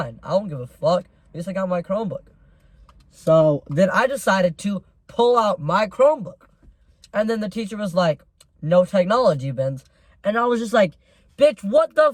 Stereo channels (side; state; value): both; identical; correlation 1.00